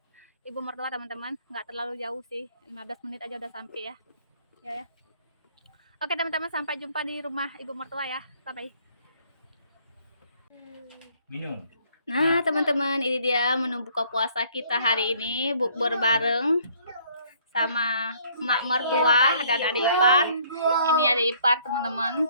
ibu mertua teman-teman. Nggak terlalu jauh sih, 15 menit aja udah sampai ya. Ya. Oke teman-teman, sampai jumpa di rumah ibu mertua ya. Bye-bye. Minum. Nah teman-teman, ini dia menu buka puasa kita hari ini, bukber bareng sama mak mertua dan adik ipar. Ini adik ipar teman-teman.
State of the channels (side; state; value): both; inverted; correlation -0.61